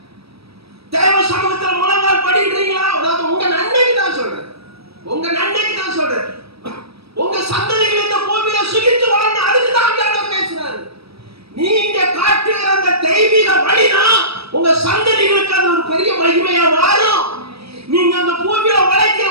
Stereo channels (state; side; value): late; left; 0.77 ms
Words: தேவ சமூகத்துல முழங்கால் படிக்கிறீங்களா? உங்க நன்மைக்கு தான் சொல்றேன். உங்க நன்மைக்கு தான் சொல்றேன். உங்க சந்ததிகள் இந்த பூமியில சுகித்து வாழணும். அதுக்கு தான் ஆண்டவர் பேசுறாரு. நீங்க காட்டுகிற அந்த தெய்வீக வழிதான் உங்க சந்ததிகளுக்கு அது ஒரு பெரிய மகிமையா மாறும். நீங்க அந்த பூமியில